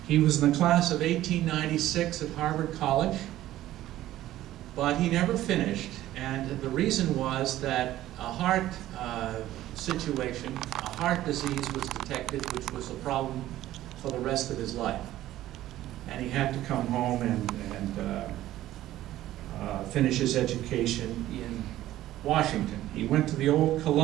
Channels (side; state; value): left; quieter; 14.3 dB